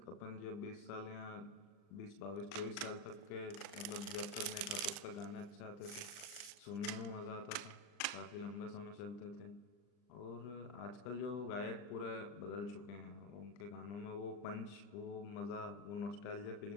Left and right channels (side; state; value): right; late; 40 ms